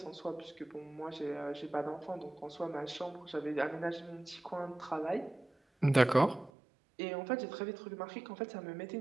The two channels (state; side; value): drops out; left; at 6.5 s